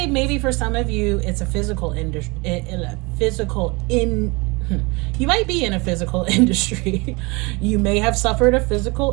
maybe for some of you it's a physical industry, you might be in a physical industry. You may have suffered a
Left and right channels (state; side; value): quieter; left; 26.7 dB